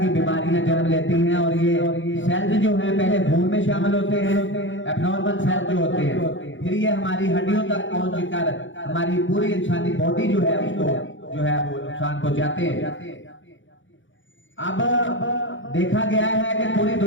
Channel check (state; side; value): late; right; 0.56 ms